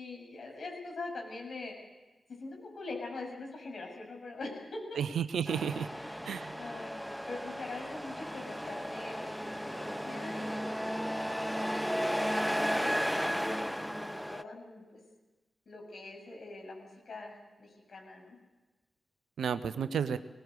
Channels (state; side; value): normal; both; correlation 0.90